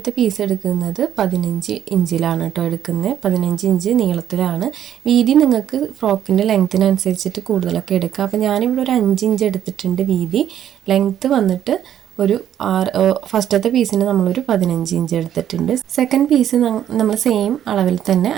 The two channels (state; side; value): quieter; left; 10.5 dB